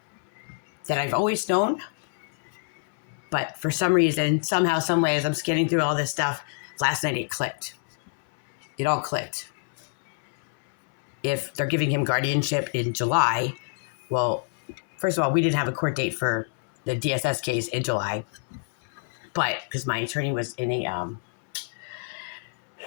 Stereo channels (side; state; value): right; silent; 61 dB below the other